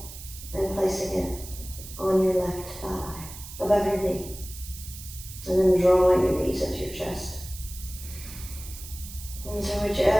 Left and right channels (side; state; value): right; noise; hiss, 13 dB below the sound